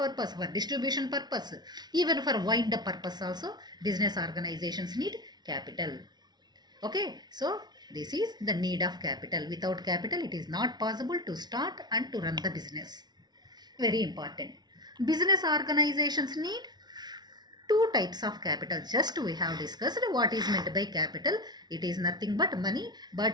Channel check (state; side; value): late; left; 0.20 ms